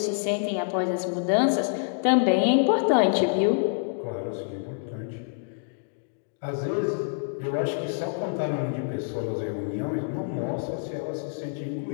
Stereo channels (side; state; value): right; silent; digital silence